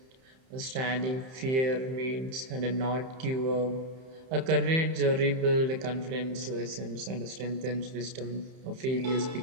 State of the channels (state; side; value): late; left; 31 ms